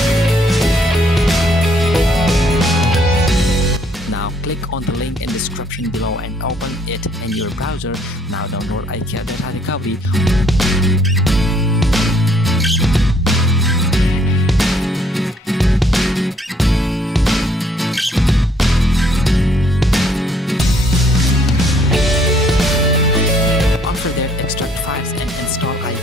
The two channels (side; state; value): both; normal; correlation 0.64